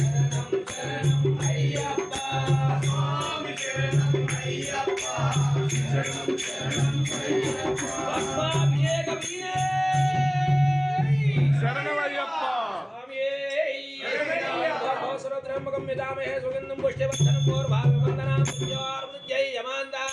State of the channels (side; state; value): both; identical; correlation 1.00